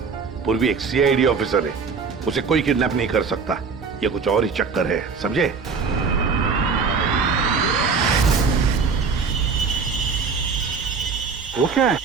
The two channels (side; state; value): left; quieter; 5.3 dB